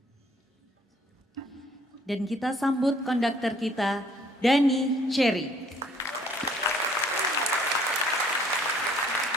Dan kita sambut konduktor kita, Dani Cherry.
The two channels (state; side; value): normal; both; correlation 0.61